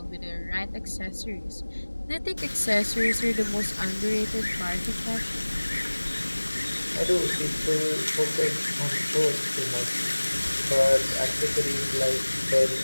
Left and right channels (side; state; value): both; inverted; correlation -1.00